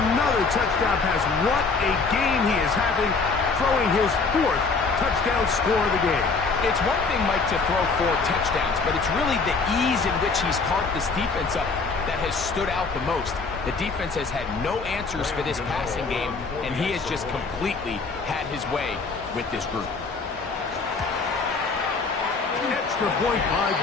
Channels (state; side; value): quieter; right; 4.4 dB